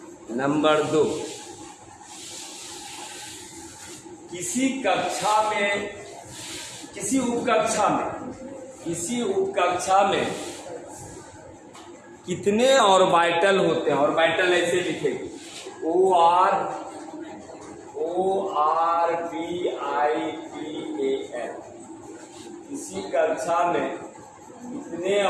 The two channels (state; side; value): identical; both; correlation 1.00